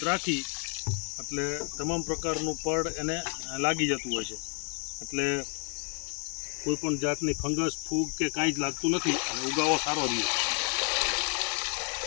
રાખી એટલે તમામ પ્રકારનું પડ એને લાગી જતું હોય છે. એટલે કોઈપણ જાતની ફંગસ, ફૂગ કે કાંઈ જ લાગતું નથી અને ઉગાવો સારો રહે.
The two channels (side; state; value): right; quieter; 39.4 dB